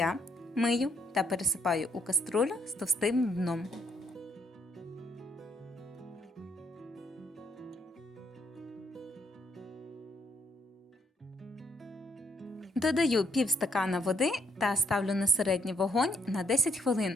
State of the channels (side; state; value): both; normal; correlation 0.71